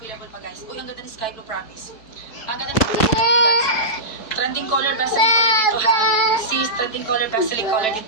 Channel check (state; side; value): late; right; 4.5 ms